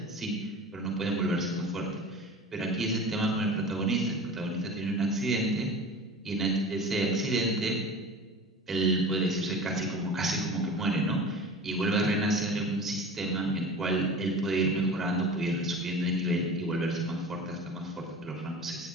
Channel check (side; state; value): both; normal; correlation 0.36